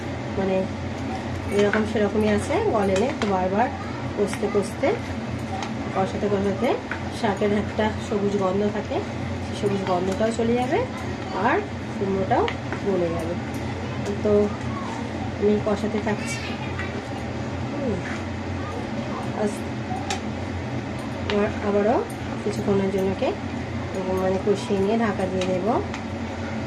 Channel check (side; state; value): both; identical; correlation 1.00